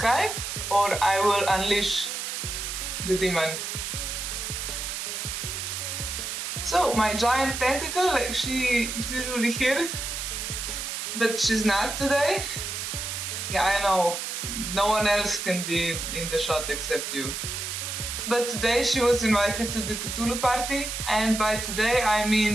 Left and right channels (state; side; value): noise; right; hiss, 4 dB below the sound